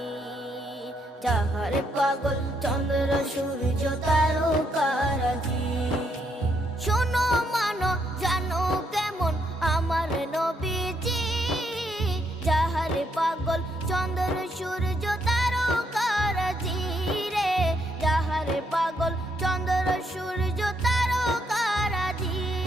যাহার পাগল চন্দ্র সূর্য তারকারাজি। শোনো মানো জানো কেমন আমার নবীজি, যাহার পাগল চন্দ্র সূর্য তারকারাজি রে, যাহার পাগল চন্দ্র সূর্য তারকারাজি।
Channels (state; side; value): normal; both; correlation 0.75